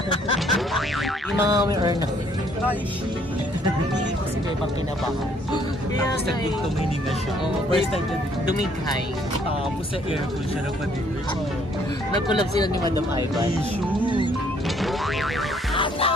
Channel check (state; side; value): normal; both; correlation 0.65